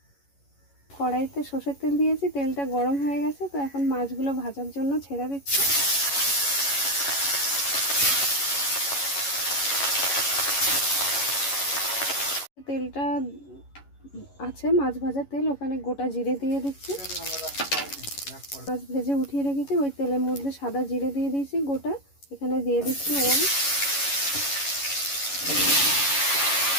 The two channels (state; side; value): late; right; 11 ms